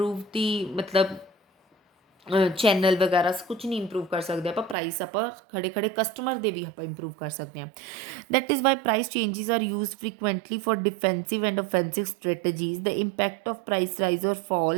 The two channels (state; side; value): drops out; left; at 4.8 s